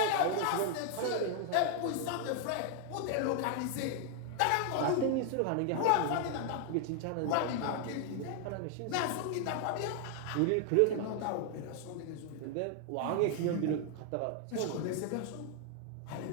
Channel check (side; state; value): both; different; correlation 0.00